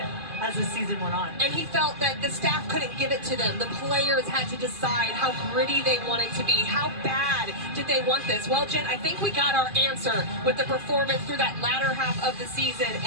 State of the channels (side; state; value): left; late; 2.4 ms